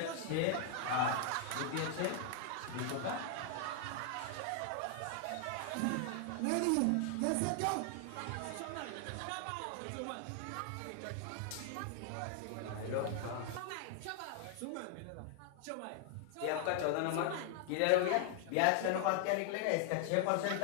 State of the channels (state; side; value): different; both; correlation 0.00